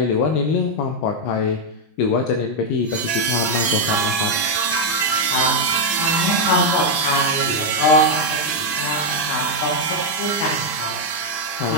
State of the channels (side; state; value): right; late; 20 ms